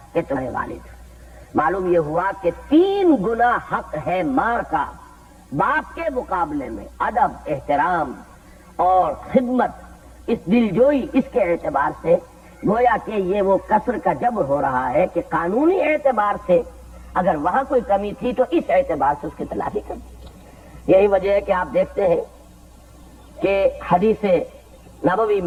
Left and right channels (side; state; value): both; identical; correlation 1.00